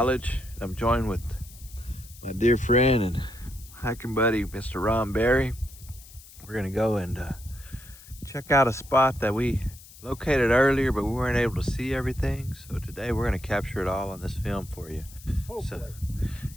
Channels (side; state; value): left; noise; hiss, 20 dB below the sound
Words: I'm joined with my dear friend and hiking buddy, Mr. Ron Berry. We're gonna go and check out a spot that we located earlier, but we weren't able to see everything. So today we're gonna capture it all on this film for you. So